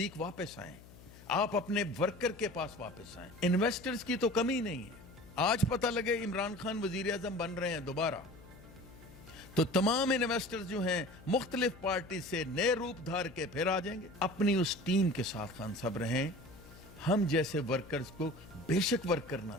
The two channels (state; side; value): noise; left; hum, 20 dB below the sound